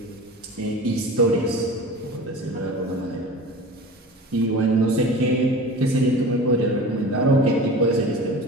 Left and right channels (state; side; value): normal; both; correlation 0.36